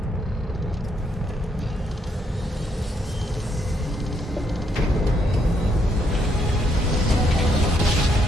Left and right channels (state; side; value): normal; both; correlation 0.74